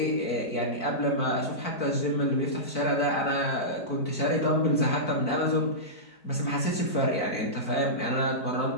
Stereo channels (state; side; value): late; right; 4.5 ms